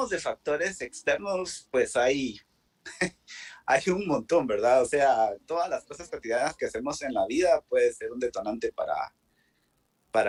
de factores externos, pues hay un montón, ¿verdad? O sea, todas las cosas cotidianas que hacemos en la vida puede ser un detonante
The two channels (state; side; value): identical; both; correlation 1.00